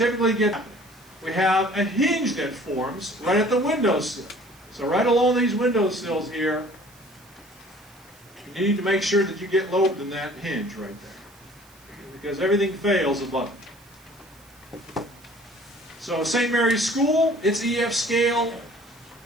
get, we have a hinge that forms right at the windowsill. So right along these windowsills here, you need to make sure that you get load in that hinge right there, because everything fails above it. So St. Mary's School, its EF scale,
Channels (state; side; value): noise; right; hiss, 27 dB below the sound